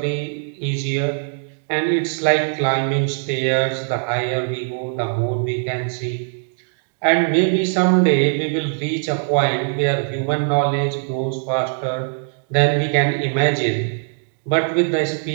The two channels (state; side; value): silent; left; digital silence